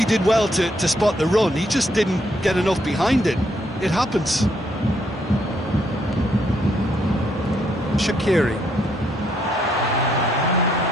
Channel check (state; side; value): normal; both; correlation 0.73